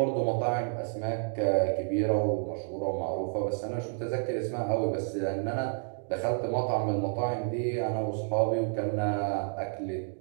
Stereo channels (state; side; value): silent; left; digital silence